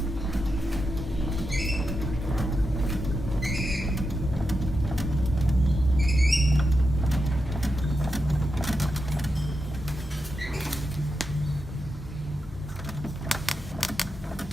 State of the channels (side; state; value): both; normal; correlation 0.87